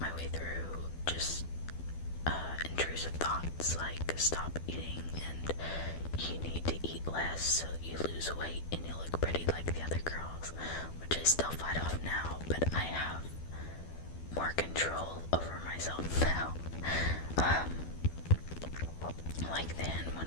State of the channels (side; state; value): right; late; 12 ms